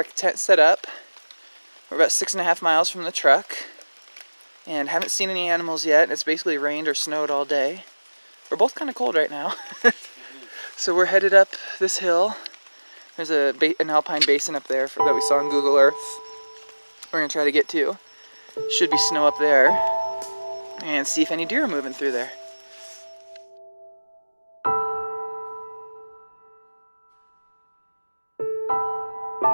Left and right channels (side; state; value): both; inverted; correlation -1.00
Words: tent set up. We're about 6.5 miles from the truck and haven't seen any animals yet. It's basically rained or snowed all day. We're both kind of cold right now. So we're headed up this hill. There's an alpine basin up there that we saw on Google Earth. We're going to try to get to. Should be snow up there. And see if any deer are moving through there.